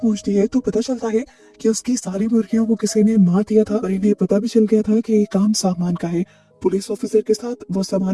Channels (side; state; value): both; identical; correlation 1.00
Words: है तो पता चलता है कि उसकी सारी मुर्गियों को किसी ने मार दिया था और इन्हें पता भी चल गया था कि ये काम सामान का है। पुलिस ऑफिसर के साथ वो सामान